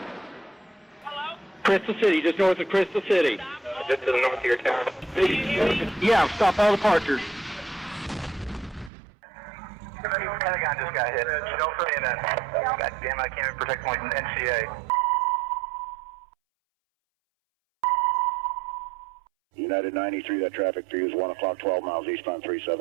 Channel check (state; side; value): drops out; left; at 8.9 s